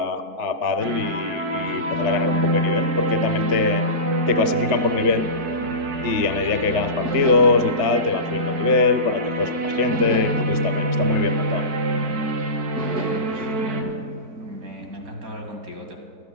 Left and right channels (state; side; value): late; left; 3.4 ms